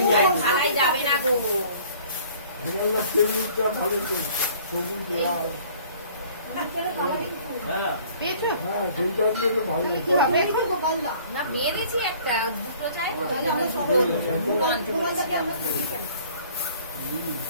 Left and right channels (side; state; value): both; inverted; correlation -0.53